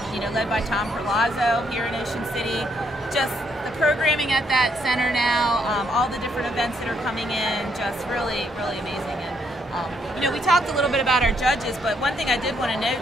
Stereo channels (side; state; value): both; normal; correlation 0.73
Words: led by Tom Perlazzo here in Ocean City. Just the programming at that center now, all the different events that are coming in, just really, really amazing. And we talked a little bit about our judges, but one thing I did want to note